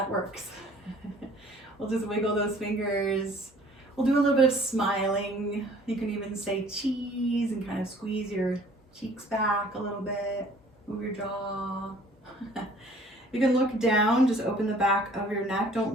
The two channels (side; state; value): both; normal; correlation 0.54